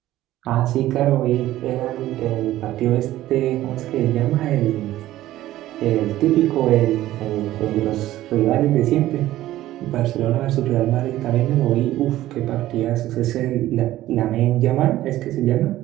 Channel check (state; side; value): quieter; left; 14.7 dB